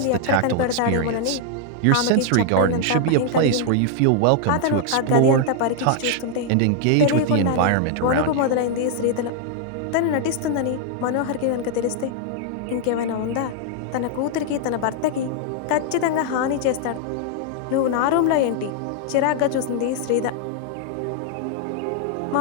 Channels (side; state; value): both; different; correlation 0.00